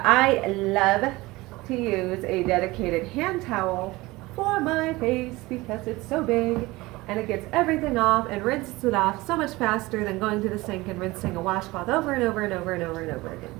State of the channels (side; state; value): left; quieter; 20.8 dB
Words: I love to use a dedicated hand towel for my face because it's so big and it gets everything off and rinses it off so much faster than going to the sink and rinsing a washcloth over and over again.